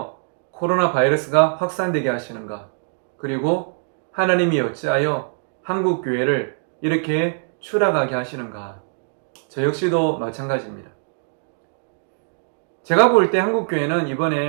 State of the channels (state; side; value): silent; left; digital silence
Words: 코로나 바이러스가 확산되게 하시는가? 그리고 하나님이 어찌하여 한국교회를 이렇게 추락하게 하시는가? 저 역시도 마찬가지입니다. 제가 볼 때 한국교회는